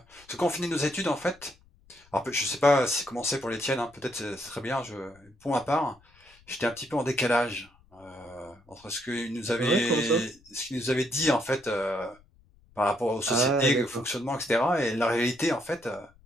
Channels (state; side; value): noise; left; rumble, 29 dB below the sound